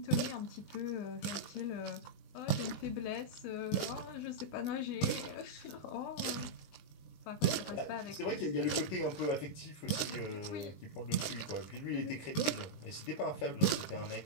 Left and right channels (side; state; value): right; late; 20 ms